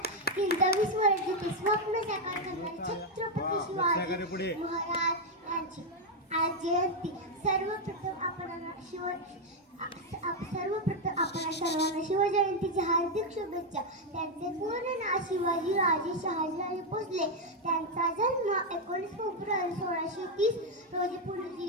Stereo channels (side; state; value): both; normal; correlation 0.02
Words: 23 वर्षाचे स्वप्न साकार करणारे छत्रपती शिवाजी महाराज यांची आज जयंती. सर्वप्रथम आपण सर्वांना शिवजयंतीच्या हार्दिक शुभेच्छा. त्यांचे पूर्ण नाव शिवाजी राजे शहाजीराजे भोसले. त्यांचा जन्म 19 फेब्रुवारी 1630 रोजी पुणे